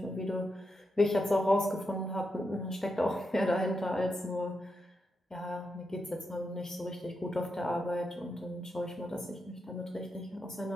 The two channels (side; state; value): both; normal; correlation 0.85